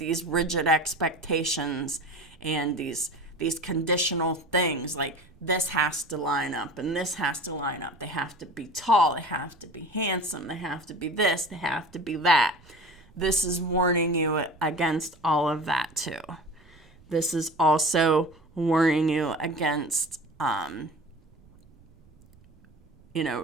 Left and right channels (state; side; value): noise; right; rumble, 27 dB below the sound